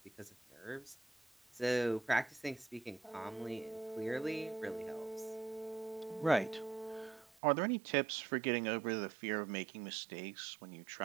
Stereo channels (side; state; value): left; drops out; at 7.4 s